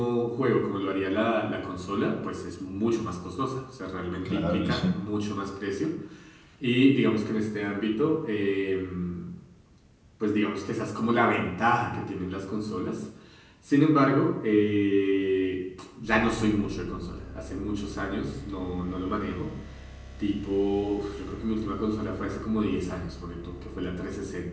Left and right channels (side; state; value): both; identical; correlation 1.00